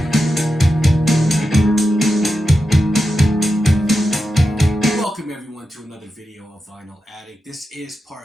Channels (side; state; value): both; normal; correlation 0.89